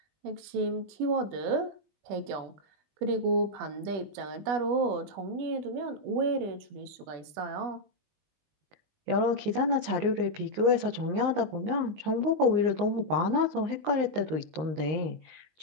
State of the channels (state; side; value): late; left; 19 ms